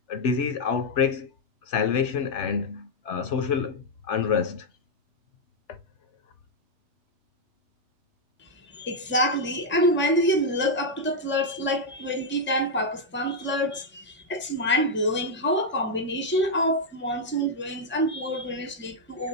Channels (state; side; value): normal; both; correlation -0.01